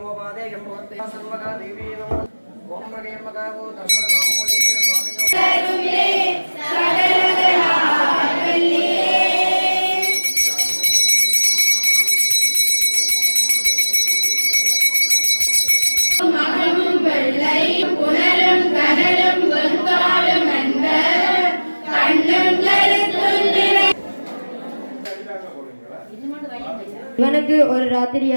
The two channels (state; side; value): inverted; both; correlation -1.00